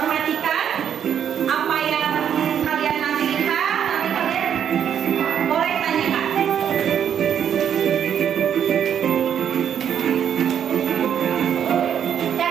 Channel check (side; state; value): left; quieter; 8.8 dB